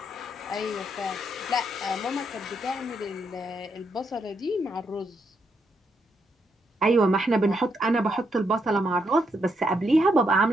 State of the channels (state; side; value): normal; both; correlation 0.78